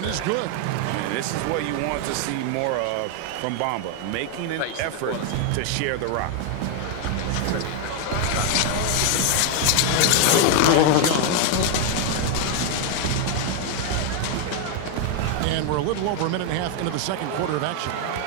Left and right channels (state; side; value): different; both; correlation 0.01